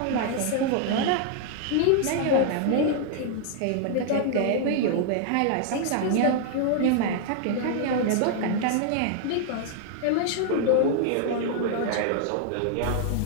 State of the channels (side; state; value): both; different; correlation 0.00